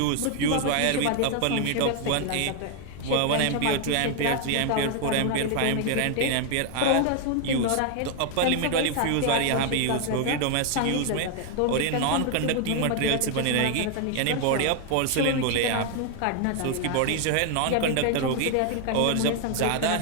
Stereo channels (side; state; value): both; different; correlation 0.00